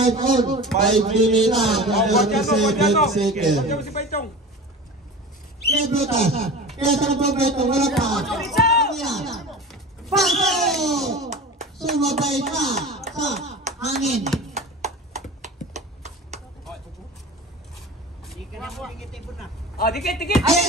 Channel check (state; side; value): normal; both; correlation 0.34